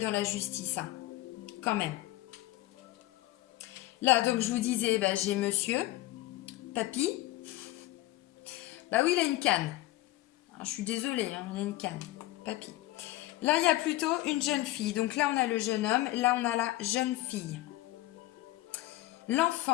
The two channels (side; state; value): right; quieter; 17.1 dB